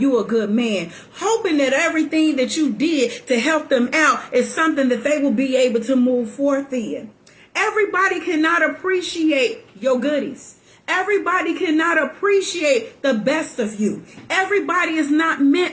a good man, hoping that everything that you did to help them out is something that they will be able to move forth in. Everybody cannot appreciate your goodies. Everybody cannot appreciate the best of you. Everybody is not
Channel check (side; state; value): both; identical; correlation 1.00